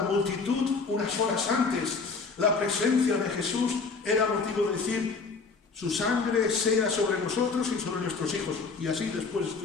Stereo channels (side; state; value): right; quieter; 4.5 dB